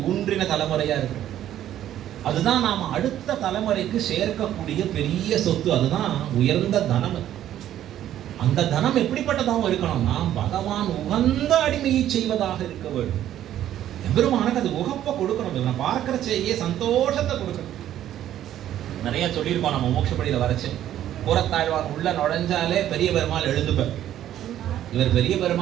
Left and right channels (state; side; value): quieter; left; 11.8 dB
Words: ஊன்றின தலைமுறையா இருக்கணும். அதுதான் நாம அடுத்த தலைமுறைக்கு சேர்க்கக்கூடிய பெரிய சொத்து. அதுதான் உயர்ந்த தனம். அந்த தனம் எப்படிப்பட்டதாகவும் இருக்கணும்னா, பகவான் உகந்த அடிமையை செய்வதாக இருக்க வேண்டும். எம்பெருமானுக்கு அது உகப்ப கொடுக்கணும். இவனை பார்க்கறச்சேயே சந்தோஷத்தை கொடுக்கணும். நிறைய சொல்லியிருக்கோம் நம்ம மோட்சப்படியில வரைச்சு. கூரத்தாழ்வான் உள்ள நுழைஞ்சாலே பெரிய பெருமாள் எழுந்துப்பார். இவர் பெரிய